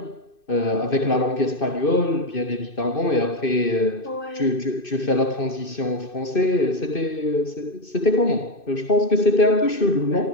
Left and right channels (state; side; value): late; right; 2.6 ms